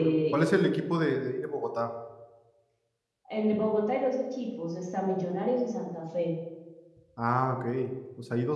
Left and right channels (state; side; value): identical; both; correlation 1.00